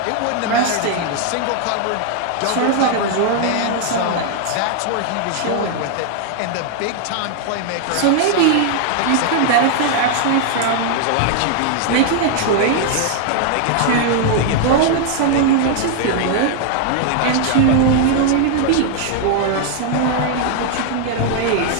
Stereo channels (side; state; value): both; different; correlation 0.00